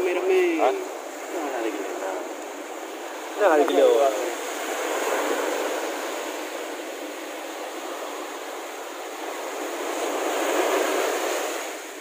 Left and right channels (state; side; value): identical; both; correlation 1.00